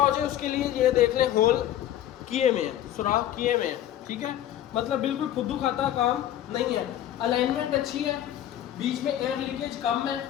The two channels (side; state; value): right; quieter; 12.0 dB